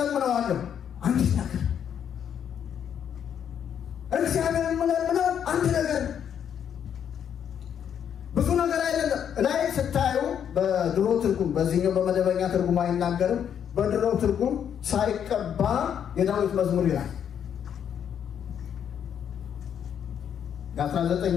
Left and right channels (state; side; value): quieter; right; 8.7 dB